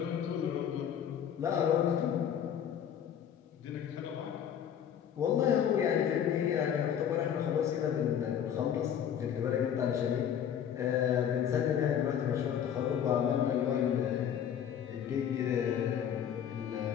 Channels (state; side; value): quieter; right; 9.1 dB